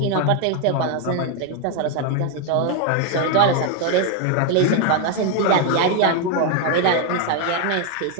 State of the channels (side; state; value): both; different; correlation 0.01